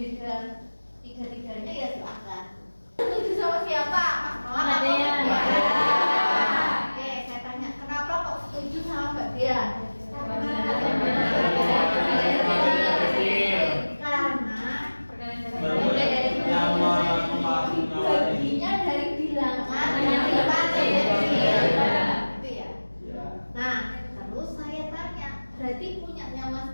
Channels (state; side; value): inverted; both; correlation -1.00